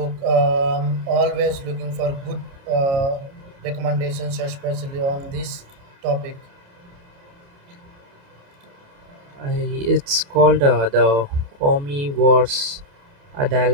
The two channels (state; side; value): late; left; 28 ms